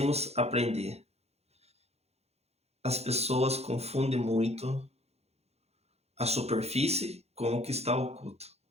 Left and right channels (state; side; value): late; left; 0.31 ms